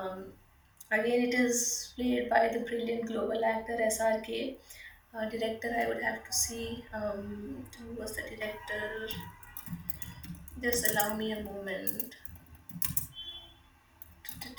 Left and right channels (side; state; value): both; identical; correlation 1.00